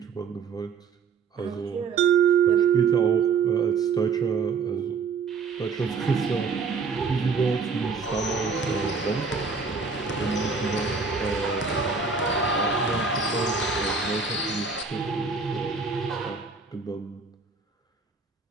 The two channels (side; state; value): left; quieter; 5.3 dB